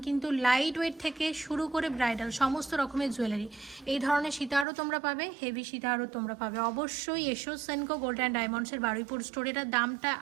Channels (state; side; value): drops out; left; at 4.7 s